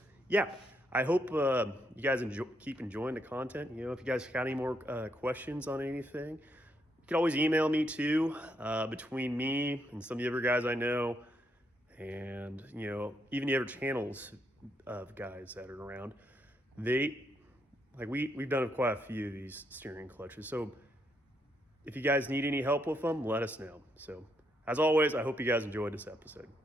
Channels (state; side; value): normal; both; correlation 0.77